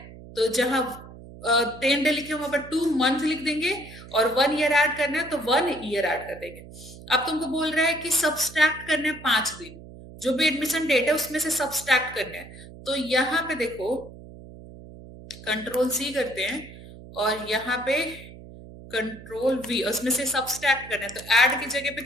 तो जहां 10 डे लिखे वहां पर 2 मंथ लिख देंगे, और 1 ईयर ऐड करना है तो 1 ईयर ऐड कर देंगे। अब तुमको बोल रहा है कि सब्सट्रैक्ट करने हैं 5 दिन, जो भी एडमिशन डेट है उसमें से सब्सट्रैक्ट करना है। तो यहाँ पे देखो, कंट्रोल C करते हैं, और यहाँ पे कंट्रोल V, उसमें से सब्सट्रैक्ट करना है तो ऐड की जगह पे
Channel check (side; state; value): right; noise; hum, 17 dB below the sound